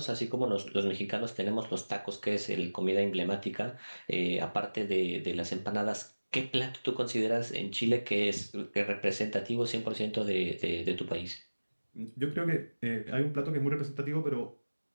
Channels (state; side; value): inverted; both; correlation -1.00